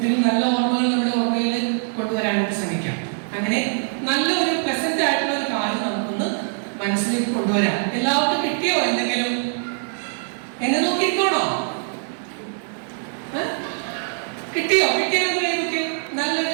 നല്ല ഓർമ്മകൾ നമ്മുടെ ഓർമ്മയിൽ കൊണ്ടുവരാനായിട്ട് ശ്രമിക്കാം. അങ്ങനെ നല്ലൊരു പ്ലസന്റ് ആയിട്ടുള്ള ഒരു കാര്യം നമുക്കൊന്ന് മനസ്സിലേക്ക് കൊണ്ടുവരാം. എല്ലാവർക്കും കിട്ടിയോ എന്തെങ്കിലും? എന്നെ നോക്കിക്കോണോ? കിട്ടിയോ? കിട്ടിയൊക്കെ നല്ലൊരു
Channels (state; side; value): silent; left; 62 dB below the other